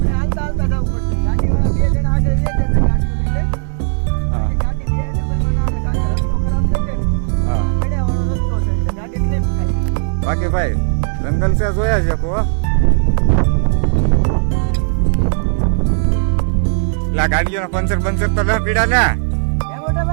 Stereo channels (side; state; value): left; silent; 65 dB below the other